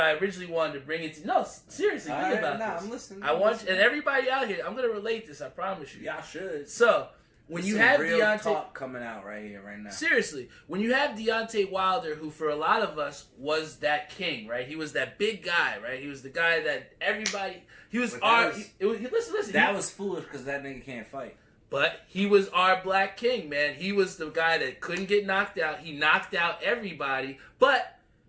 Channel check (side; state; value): both; identical; correlation 1.00